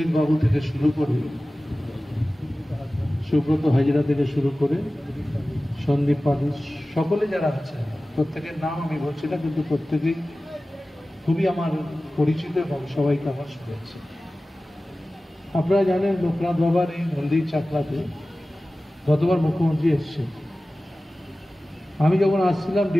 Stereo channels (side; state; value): both; normal; correlation 0.96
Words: বাবু থেকে শুরু করে সুব্রত হাজরা থেকে শুরু করে সন্দীপ পাঠক, সকলে যারা আছে প্রত্যেকের নাম আমি বলছি না, কিন্তু প্রত্যেকেই খুবই আমার পরিচিত এবং সবাইকে আমার শুনেছে। আপনারা জানেন লোকনাথ বাবার এই মন্দির চাকলাতে গতবার মুখ্যমন্ত্রী এসছেন। আমি যখন আসছিলাম